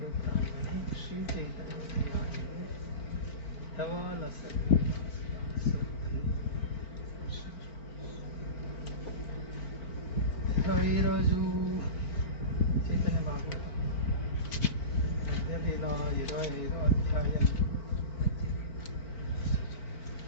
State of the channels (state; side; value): late; right; 4.5 ms